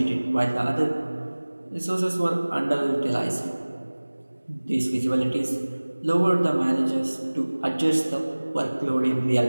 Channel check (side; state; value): both; inverted; correlation -1.00